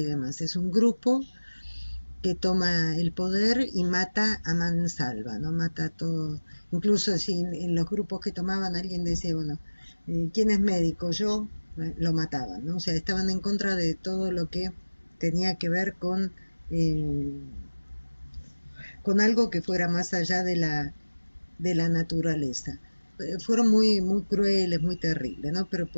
demás. Es un grupo que toma el poder y mata a mansalva, ¿no? Mata a todo. Incluso si en los grupos que tomaban alguien decía, bueno, ¿quién es médico? Yo, lo mataban, ¿no? O sea, estaban en contra de todo lo que tenía que ver eh, con algo que fuera más allá de la naturaleza. Fueron muy crueles, muy terribles, ¿no? Pero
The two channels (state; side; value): inverted; both; correlation -1.00